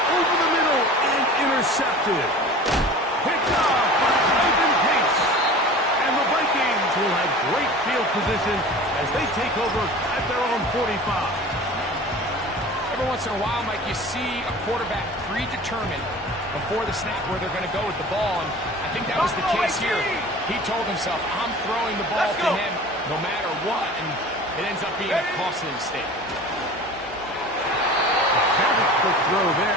over the middle and intercepted. Picked off by Ivan Pace. And the Vikings will have great field position as they take over at their own 45. Every once in a while, Mike, you see a quarterback predetermined before the snap where they're going to go with the ball, and I think that was the case here. He told himself, I'm throwing the ball to him no matter what, and it ends up being a costly mistake. Very quick throw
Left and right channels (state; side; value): normal; both; correlation 0.39